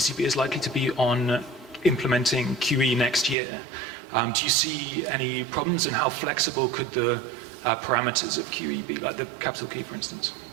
is likely to be on implementing QE next year. Do you see any problems, and how flexible could the parameters of QE be, like the capital key, for instance?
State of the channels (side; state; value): left; drops out; at 3.4 s